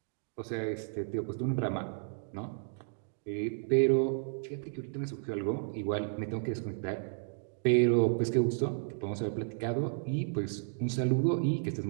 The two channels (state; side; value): silent; left; digital silence